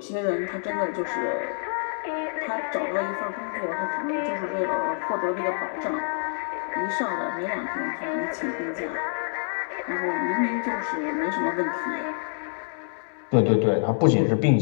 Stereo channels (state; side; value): silent; right; digital silence